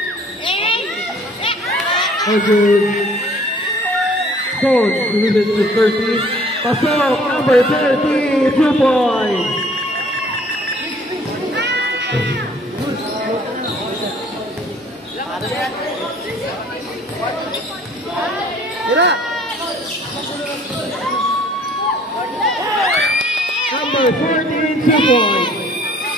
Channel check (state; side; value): normal; both; correlation 0.55